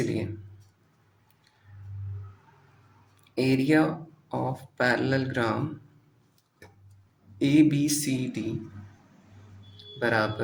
एरिया ऑफ पैरेललोग्राम ए बी सी डी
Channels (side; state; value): both; identical; correlation 1.00